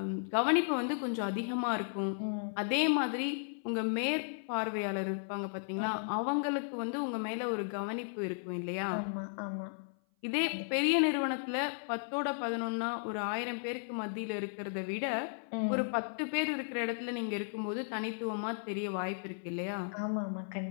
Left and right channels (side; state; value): right; silent; 55 dB below the other